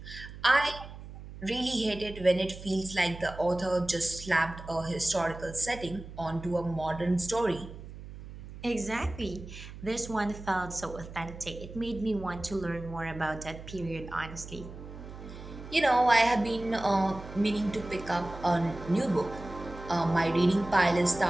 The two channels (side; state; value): right; noise; hum, 13 dB below the sound